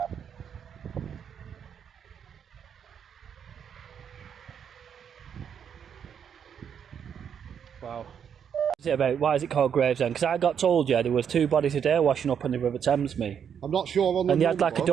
Wow. What's it about? Why is it called Gravesend? Because I got told, there was 2 bodies a day washing up on the River Thames, me. I'm not sure on the And they had like a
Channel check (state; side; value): quieter; left; 7.9 dB